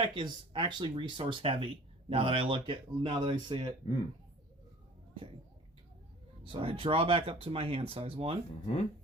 is actually resource heavy now that I see it. Okay. So I draw back up to my hand size. 1,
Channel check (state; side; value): normal; both; correlation 0.47